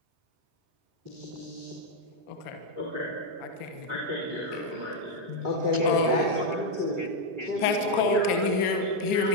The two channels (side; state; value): left; late; 4.3 ms